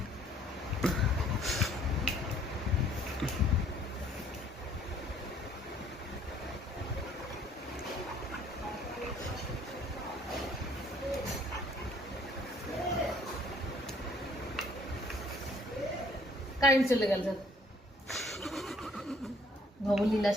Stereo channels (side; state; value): both; normal; correlation 0.60